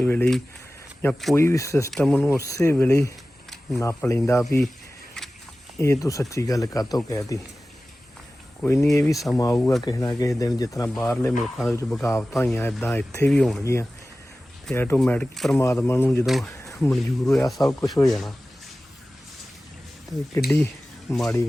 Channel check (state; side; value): normal; both; correlation 0.96